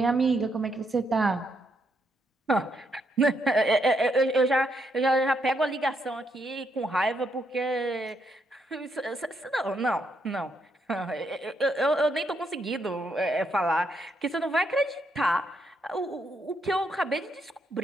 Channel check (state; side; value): normal; both; correlation 0.77